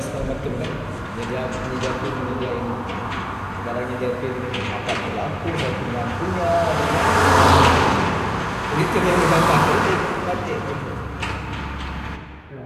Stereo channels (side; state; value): both; identical; correlation 1.00